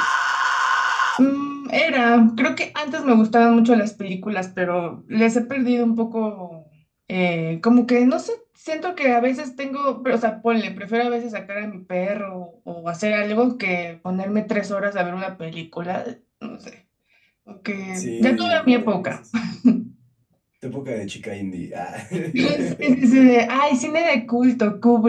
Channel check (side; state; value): both; identical; correlation 1.00